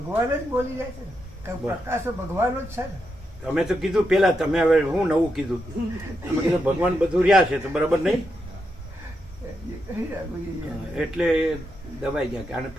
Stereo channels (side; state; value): both; normal; correlation 0.84